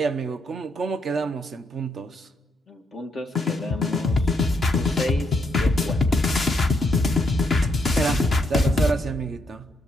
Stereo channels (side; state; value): both; normal; correlation 0.76